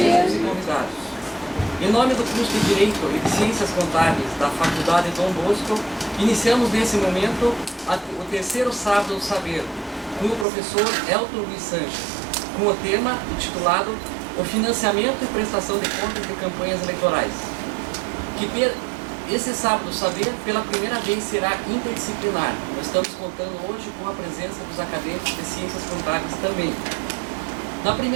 e convidados. Em nome do curso de Direito e de Ciências Contábeis da Faculdade Dom Bosco, iniciamos nesse momento o terceiro sábado do saber, com o professor Elton Luiz Sanches, com o tema intitulado O Financiamento e Prestação de Contas de Campanhas Eleitorais, que esse sábado do saber, pela primeira vez, será interdisciplinar. Nós estamos contando hoje com a presença dos acadêmicos de Ciências Contábeis também. Na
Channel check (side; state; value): left; drops out; at 10.5 s